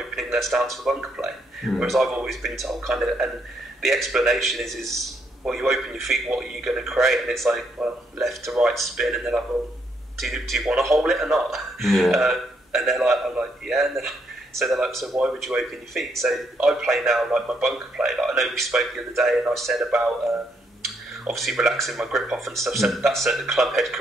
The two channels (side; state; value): both; normal; correlation 0.74